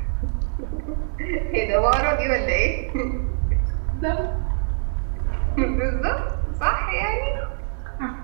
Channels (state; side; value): silent; left; 63 dB below the other